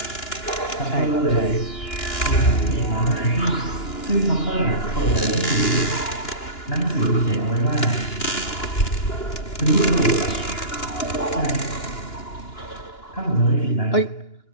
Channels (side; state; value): right; late; 2.9 ms